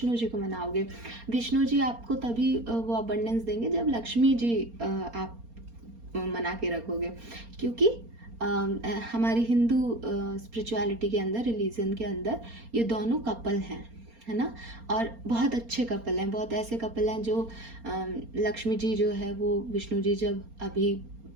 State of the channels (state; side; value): late; left; 4.3 ms